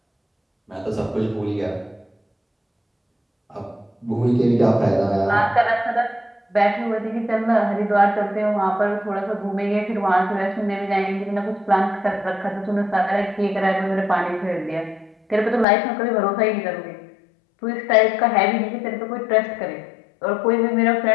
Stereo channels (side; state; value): right; drops out; at 15.7 s